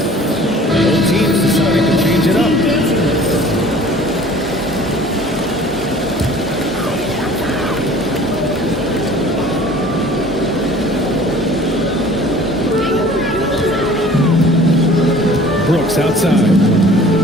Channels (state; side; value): normal; both; correlation 0.48